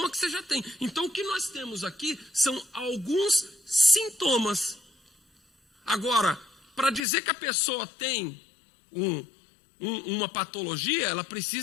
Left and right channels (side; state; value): right; drops out; at 7.1 s